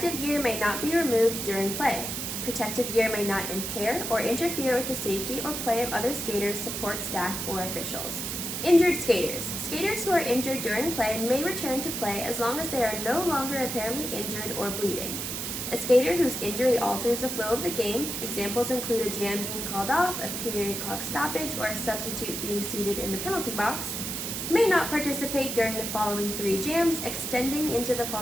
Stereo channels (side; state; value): right; noise; hiss, 4 dB below the sound